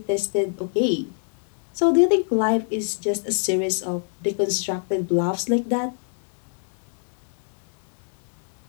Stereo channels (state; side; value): silent; right; 56 dB below the other